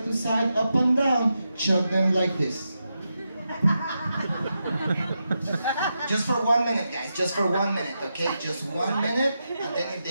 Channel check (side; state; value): both; inverted; correlation -0.87